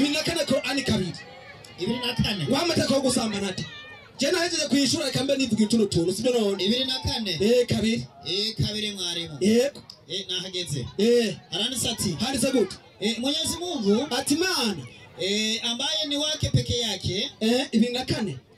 nakane ko ani kabiri ibiri nakane wamataka ko gusamba nata jena hejeje kwishura kambe nivuga ituno tuntu sibyo none ibiri nakane kabiri mwarimu yego nahageze aranditse ati handitse gute Mwenyezi Mungu ati Mana ambaye ni wake peke yake 24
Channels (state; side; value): identical; both; correlation 1.00